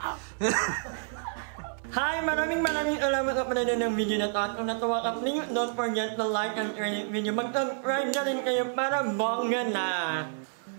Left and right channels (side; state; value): left; silent; 59 dB below the other